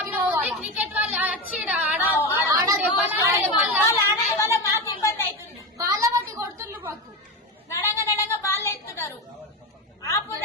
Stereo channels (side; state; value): both; normal; correlation 0.18